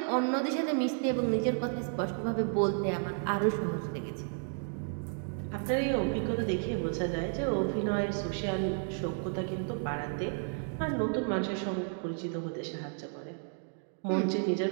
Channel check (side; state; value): left; silent; 56 dB below the other